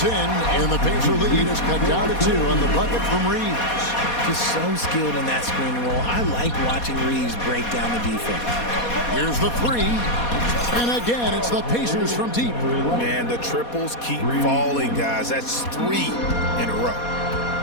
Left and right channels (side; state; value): right; late; 4.2 ms